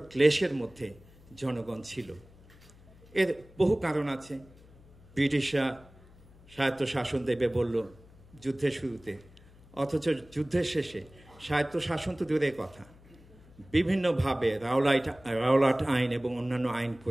ক্লেশের মধ্যে জনগণ ছিল। এর বহু কারণ আছে। ব্রিটিশরা স্বায়ত্তশাসন দেবে বলল যুদ্ধের শুরুতে, অথচ যুদ্ধের শেষে স্বায়ত্তশাসন তো দূরের কথা, বিভিন্নভাবে রাওলাট আইন এবং অন্যান্য আইন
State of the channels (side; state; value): left; noise; hum, 24 dB below the sound